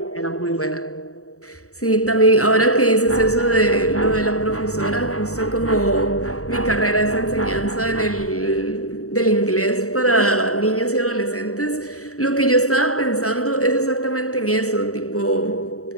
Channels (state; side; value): late; right; 0.65 ms